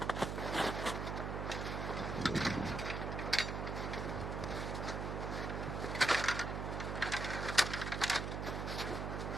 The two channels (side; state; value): right; noise; hum, 2 dB below the sound